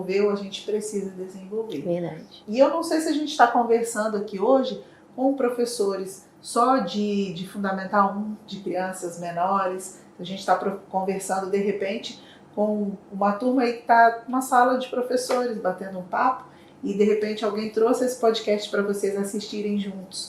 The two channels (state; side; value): identical; both; correlation 1.00